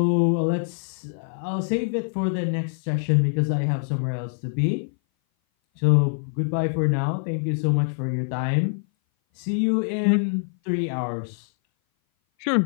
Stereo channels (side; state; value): right; silent; 58 dB below the other